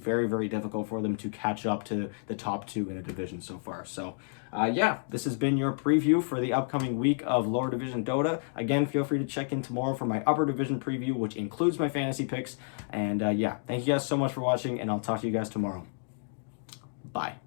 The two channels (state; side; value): silent; right; digital silence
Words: very difficult for them to catch up to the top 2 in the division so far. So yeah, this has been your preview for the upcoming week of lower division Dota. Again, feel free to check in tomorrow for my upper division preview, which includes my fantasy picks. And yeah, thank you guys so much for watching, and I'll talk to you guys tomorrow. Bye.